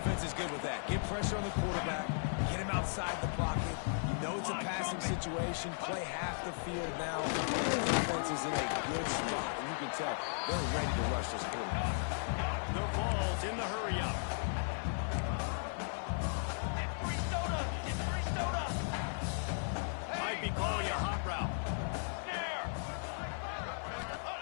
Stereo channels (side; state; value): right; silent; 54 dB below the other